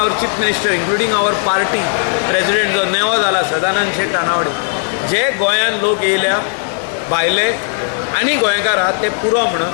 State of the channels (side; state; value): right; silent; 57 dB below the other